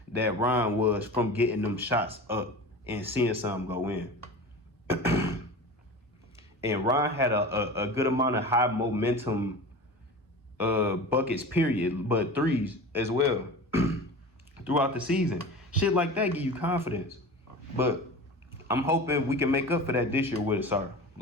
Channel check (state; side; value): normal; both; correlation 0.33